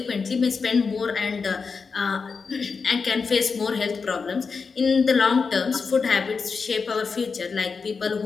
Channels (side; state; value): right; quieter; 5.1 dB